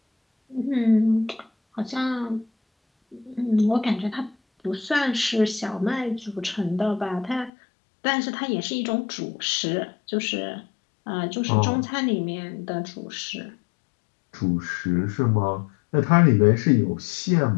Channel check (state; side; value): drops out; right; at 7.5 s